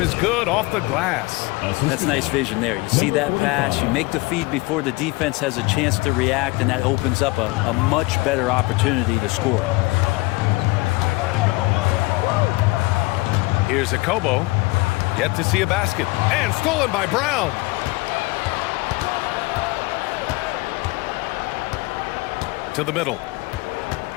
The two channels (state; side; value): quieter; right; 23.1 dB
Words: is good off the glass. That's nice vision there. You see that pass, you make the feed before the defense has a chance to react, and that opens up a much better opportunity to score. Here's a Kobo, yet to see a basket, and stolen by Brown. To the middle.